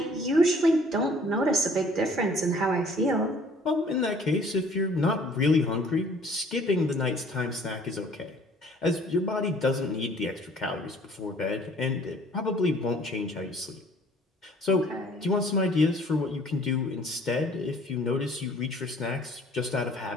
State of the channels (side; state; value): both; normal; correlation 0.55